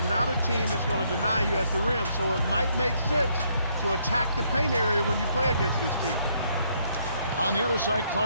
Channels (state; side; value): inverted; both; correlation -0.71